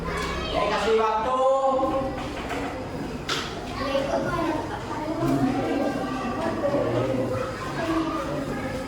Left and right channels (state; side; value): identical; both; correlation 1.00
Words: Ya, kasih waktu.